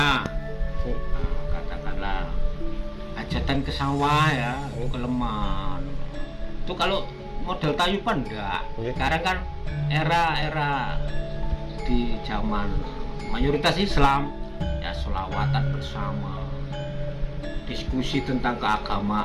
katakanlah hajatan ke sawah ya, ke Leman itu kalau model tayuban enggak. Sekarang kan era di zaman mayoritas Islam ya, sholawatan bersama, diskusi tentang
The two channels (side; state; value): both; identical; correlation 1.00